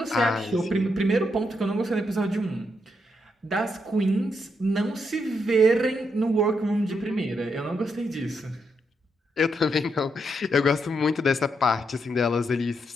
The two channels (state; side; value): normal; both; correlation 0.80